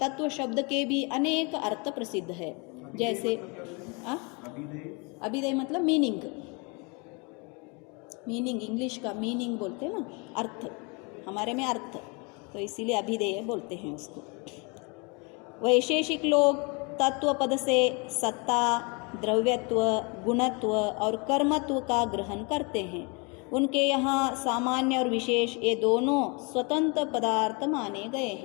शब्द के भी अनेक अर्थ प्रसिद्ध है। जैसे अभिधेय मतलब मीनिंग, इंग्लिश का मीनिंग बोलते हैं ना, अर्थ, हमारे में अर्थ, तो इसीलिए अभिधेय बोलते हैं उसको। वैशेषिक लोग तत्व पद से सत्ता, द्रव्यत्व, गुणत्व और कर्मत्व का ग्रहण करते हैं। उनके यहाँ सामान्य और विशेष ये दोनों स्वतंत्र पदार्थ माने गए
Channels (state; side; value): quieter; right; 31.3 dB